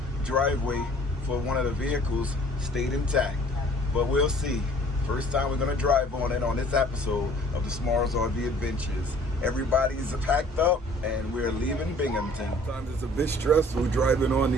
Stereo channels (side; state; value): both; normal; correlation 0.53